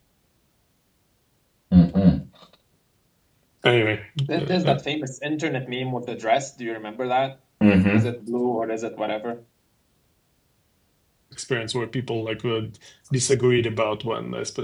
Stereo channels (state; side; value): identical; both; correlation 1.00